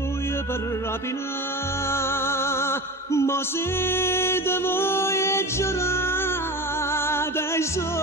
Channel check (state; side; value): normal; both; correlation 0.31